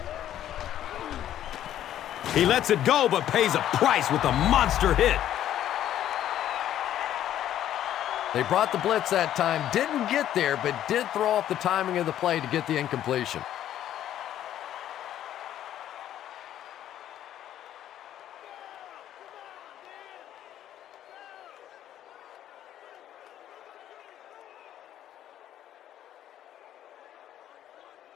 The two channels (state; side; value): quieter; right; 11.6 dB